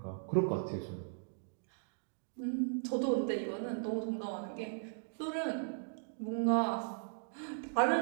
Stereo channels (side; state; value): left; silent; digital silence